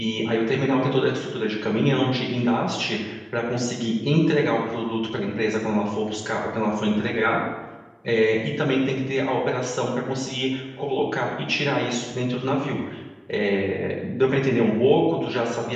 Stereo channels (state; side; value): identical; both; correlation 1.00